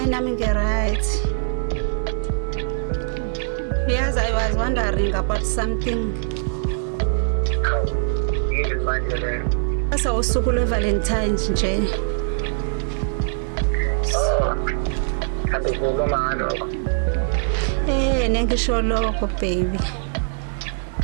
nami nge-right. Yes, I was wondering about something. Yini manje le? Asa usuku lwe-Valentine's nje. Oh. Kanti kukhuluma ngalo. Nengisho lokho baby.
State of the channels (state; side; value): silent; left; digital silence